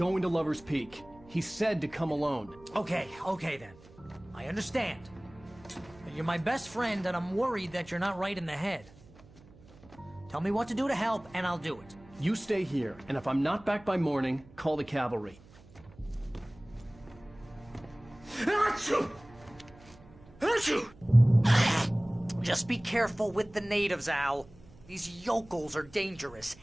to Lover's Peak. He said to come alone. Okay then. I understand. You're my best friend, and I'm worried that you're not right in the head. Tell me what to do to help, and I'll do it. You stay here, and if I'm not back by morning, call the cavalry. Just be careful with the natives, Al. These yokels are dangerous.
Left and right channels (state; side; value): noise; right; hum, 23 dB below the sound